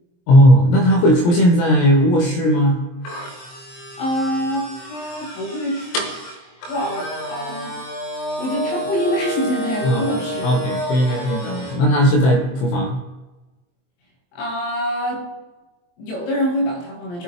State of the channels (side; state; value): right; late; 23 ms